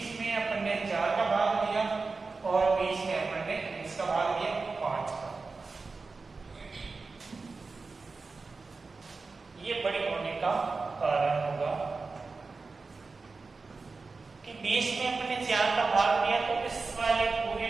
में अपन ने 4 का भाग दिया, और 20 में अपन ने इसका भाग दिया 5 का। ये बड़ी होने का कारण होगा कि 20 में अपन ने 4 का भाग दिया, तो इस वाले पूरे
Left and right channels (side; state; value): left; quieter; 4.1 dB